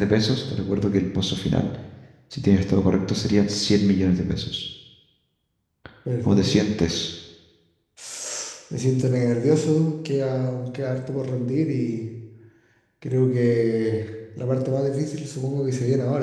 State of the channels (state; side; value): identical; both; correlation 1.00